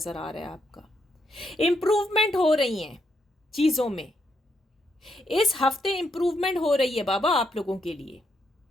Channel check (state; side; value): normal; both; correlation 0.77